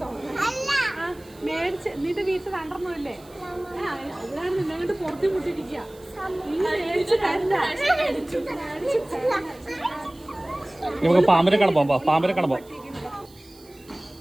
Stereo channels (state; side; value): noise; right; hiss, 26 dB below the sound